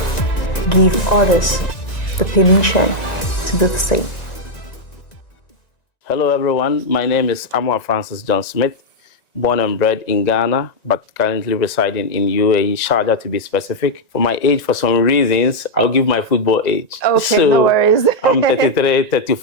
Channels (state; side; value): late; right; 1.9 ms